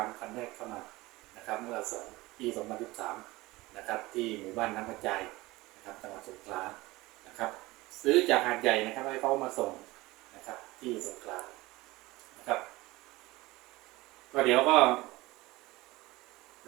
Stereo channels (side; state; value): left; quieter; 20.2 dB